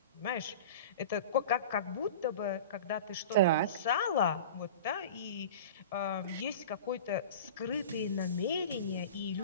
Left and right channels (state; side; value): inverted; both; correlation -0.34